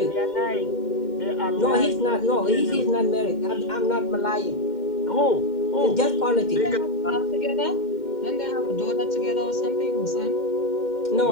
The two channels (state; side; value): late; right; 2.1 ms